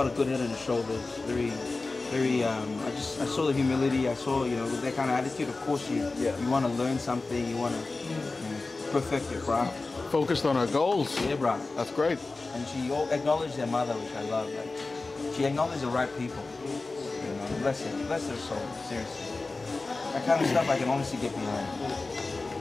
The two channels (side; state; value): right; quieter; 3.5 dB